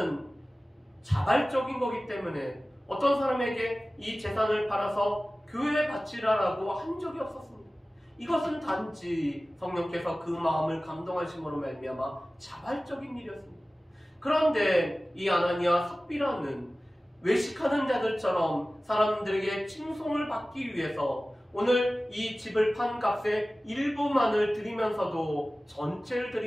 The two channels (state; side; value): normal; both; correlation 0.97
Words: 자발적인 거기 때문에 어떤 사람에게 이 재산을 팔아서 교회에 바치라라고 한 적이 없었습니다. 이것은 단지 성령께서 그 마음을 감동하심으로 말미암아 자발적인 일이었습니다. 그런데 이 아나니와 삽비라는 외식하는 자들처럼 사람들에게 칭송을 받기 위해서 오늘 이 집을 판 값의 일부만을 드리면서도 전체를